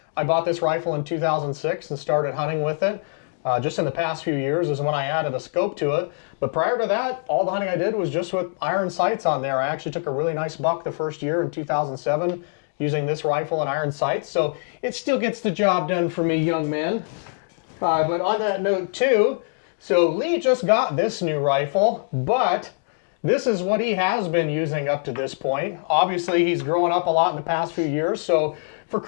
I bought this rifle in 2006 and started hunting with it. Just in the past few years is when I added a scope to it. But prior to that, all the hunting I did was just with iron sights on there. I actually took a really nice buck the first year in 2007 using this rifle and iron sights. So it still gets the job done for me, young man. But on that note too, so Lee just got this new rifle, but this is what he has been using up to this point. Obviously, he's grown up a lot in the past few years. So for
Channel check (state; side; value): silent; right; digital silence